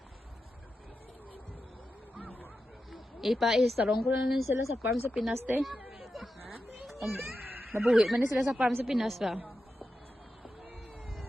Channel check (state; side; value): normal; both; correlation 0.90